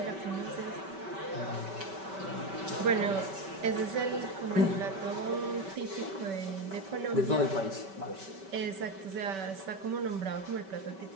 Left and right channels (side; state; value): left; late; 5.2 ms